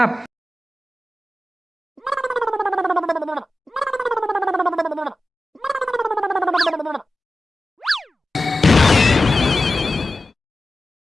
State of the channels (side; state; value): both; normal; correlation 0.94